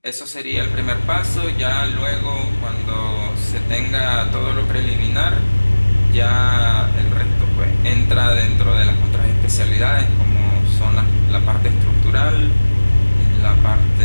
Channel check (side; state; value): both; inverted; correlation -1.00